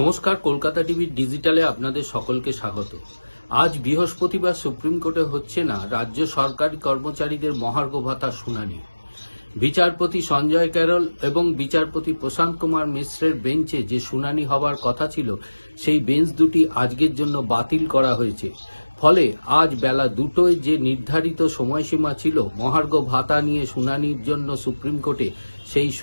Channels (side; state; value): both; inverted; correlation -1.00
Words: কলকাতা টিভি ডিজিটালে আপনাদের সকলকে স্বাগত। আজ বৃহস্পতিবার সুপ্রিম কোর্টে হচ্ছে না রাজ্য সরকারি কর্মচারীদের মহার্ঘ ভাতার শুনানি। বিচারপতি সঞ্জয় ক্যারল এবং বিচারপতি প্রশান্ত কুমার মিশ্রের বেঞ্চে যে শুনানি হবার কথা ছিল, সেই বেঞ্চ দুটি আজকের জন্য বাতিল করা হয়েছে। ফলে আজ বেলা 2টায় যে নির্ধারিত সময়সীমা ছিল মহার্ঘ ভাতা নিয়ে শুনানির জন্য সুপ্রিম কোর্টে, সেই